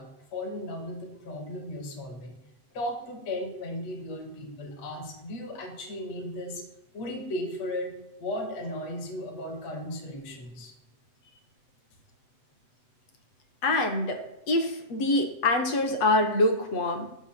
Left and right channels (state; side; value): late; right; 7.9 ms